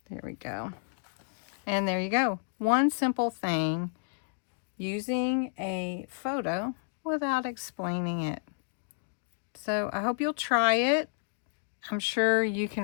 There we go. And there you go. One simple thing, using a photo without explaining it. So I hope you'll try it. I'm sure you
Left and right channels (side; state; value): right; silent; digital silence